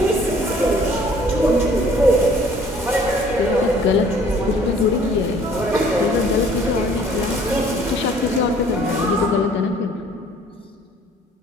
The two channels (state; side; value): normal; both; correlation 0.56